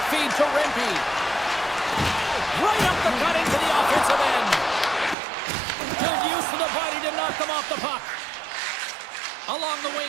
feed to Rimpey. Right up the gut into the offensive end. Good use of the body to knock them off the puck. Along the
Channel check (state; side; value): drops out; left; at 5.2 s